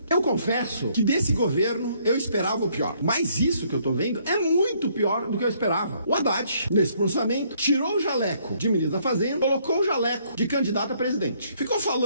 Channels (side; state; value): both; inverted; correlation -0.67